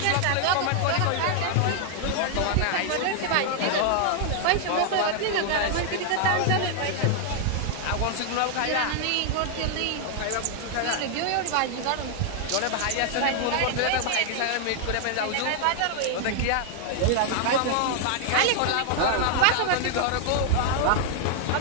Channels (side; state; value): both; different; correlation 0.00